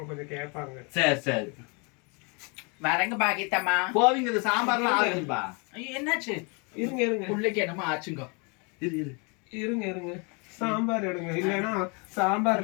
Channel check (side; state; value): right; quieter; 32.8 dB